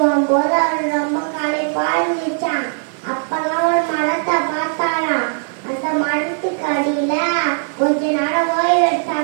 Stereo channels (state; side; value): silent; left; 67 dB below the other